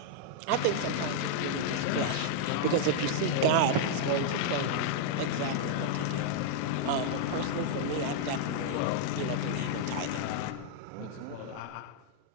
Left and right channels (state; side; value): different; both; correlation -0.01